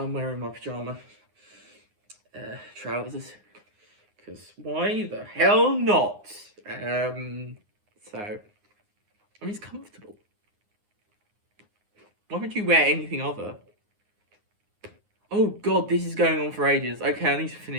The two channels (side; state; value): left; late; 9.6 ms